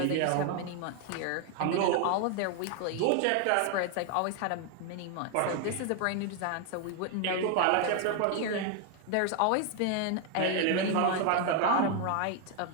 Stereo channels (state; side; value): different; both; correlation 0.00